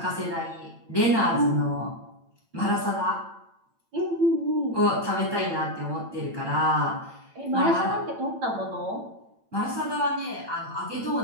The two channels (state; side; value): late; left; 8.9 ms